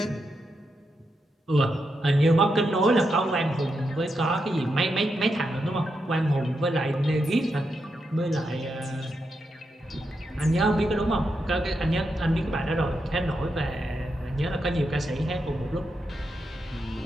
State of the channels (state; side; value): normal; both; correlation 0.84